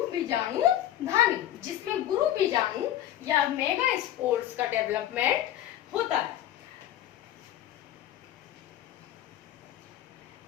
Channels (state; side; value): quieter; right; 12.5 dB